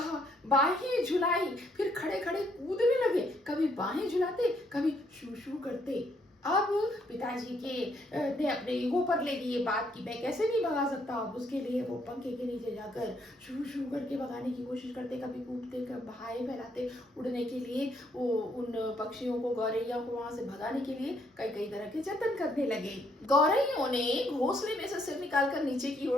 बाहें झुलाई, फिर खड़े खड़े कूदने लगे, कभी बाहें झुलाते, कभी शू शू करते। अब पिताजी के ने अपने ईगो पर ले ली ये बात कि मैं कैसे नहीं भगा सकता। अब उसके लिए वो पंखे के नीचे जाकर शू शू करके भगाने की कोशिश करते, कभी कूदते, कभी बाहें फैलाते, उड़ने के लिए वो उन पक्षियों को, गौरैया को वहां से भगाने के लिए कई कई तरह के जतन करने लगे। गौरैयों ने घोंसले में से सिर निकालकर नीचे की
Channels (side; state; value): both; normal; correlation 0.71